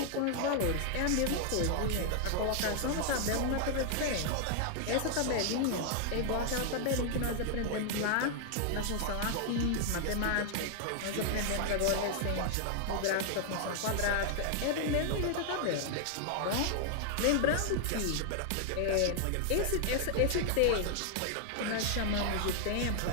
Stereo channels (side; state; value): both; different; correlation 0.00